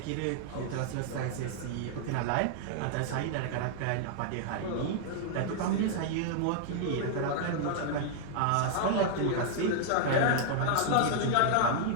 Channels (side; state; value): both; different; correlation -0.01